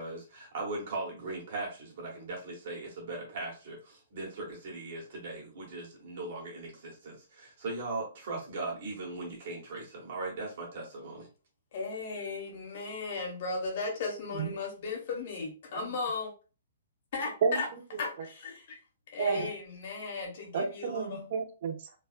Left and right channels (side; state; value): both; inverted; correlation -0.54